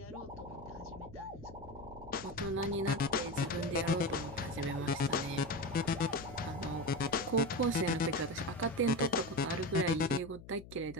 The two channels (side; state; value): left; noise; hum, 17 dB below the sound